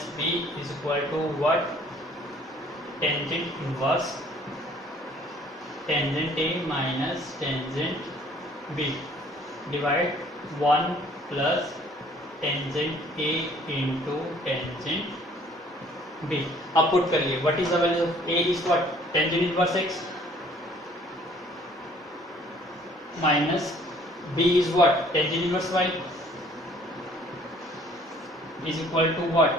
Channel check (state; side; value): normal; both; correlation 0.57